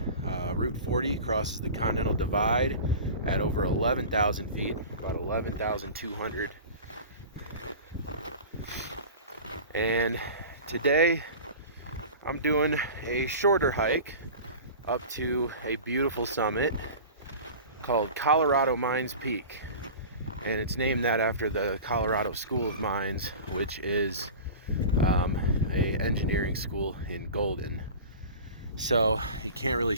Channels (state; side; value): inverted; both; correlation -0.36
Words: Route 40 crosses the Continental Divide at over 11,000 feet, about 11,200. And today I'm doing a shorter hike up to a beautiful summit called Colorado Mines Peak, and it's named that after the Colorado School of Mines, which is a engineering school in Golden. So you can't really